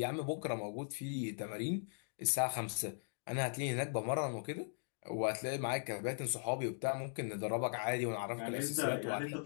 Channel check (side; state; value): right; silent; digital silence